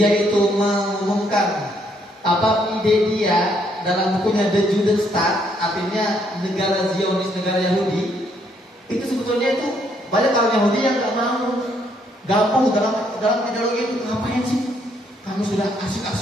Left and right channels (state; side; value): normal; both; correlation 0.71